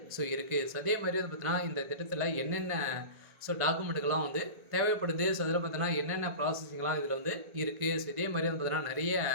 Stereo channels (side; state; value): left; late; 1.6 ms